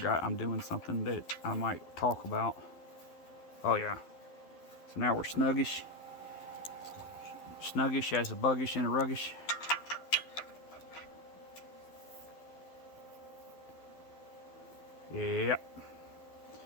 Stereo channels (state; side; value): late; right; 12 ms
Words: I'm doing something that I might talk about. Oh yeah. So now we're snuggish. Snuggish as a buggish and a ruggish. Yep.